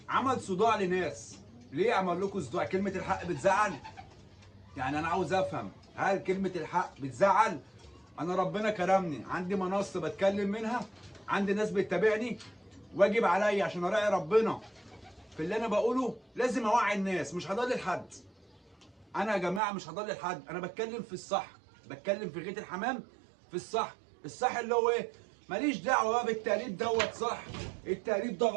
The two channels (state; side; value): drops out; left; at 19.6 s